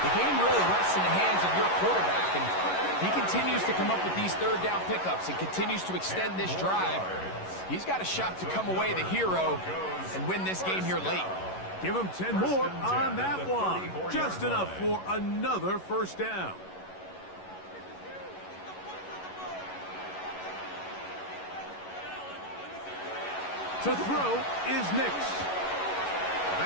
the game really rests in the hands of your quarterback. And he continues to come up with these third down pickups and continues to extend this drive. He's got a shot to come away the hero and win this game here late. Give him 10 more on that one. Just enough for another first down. To throw is Nix.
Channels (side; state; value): right; late; 11 ms